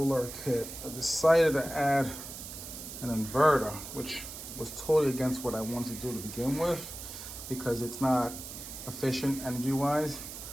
kit. I decided to add an inverter, which was totally against what I wanted to do to begin with because it's not efficient energy-wise.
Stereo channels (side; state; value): right; noise; hiss, 10 dB below the sound